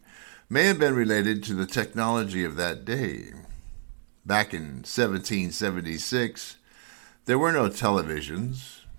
may have been related to the technology of that day. Back in 1776, there were no televisions,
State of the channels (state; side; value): silent; left; 59 dB below the other